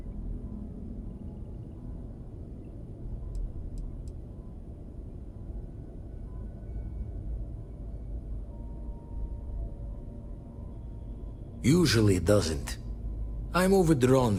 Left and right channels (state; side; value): identical; both; correlation 1.00